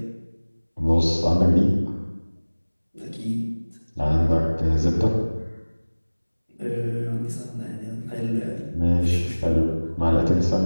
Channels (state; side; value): inverted; both; correlation -1.00